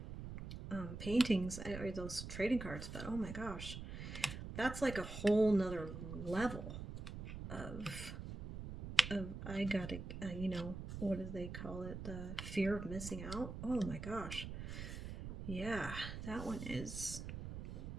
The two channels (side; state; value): right; noise; rumble, 8 dB below the sound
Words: paintings or those trading cards, but oh my gosh, that's like a whole nother level of I gotta, you know, what do they call it? The fear of missing out. Oh my gosh. Yeah, that one is,